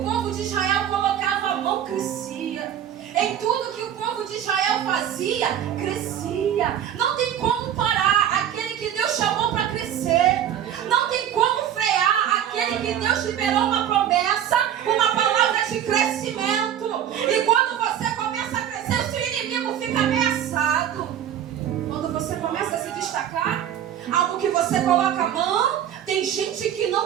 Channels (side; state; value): left; quieter; 10.1 dB